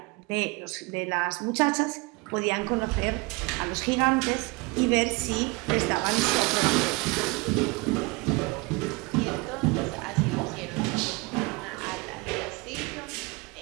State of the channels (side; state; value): left; quieter; 26.1 dB